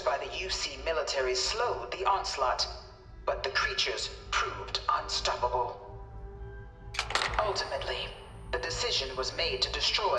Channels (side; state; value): both; identical; correlation 1.00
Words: the UC military slowed the onslaught, but the creatures proved unstoppable. Ultimately, the decision was made to destroy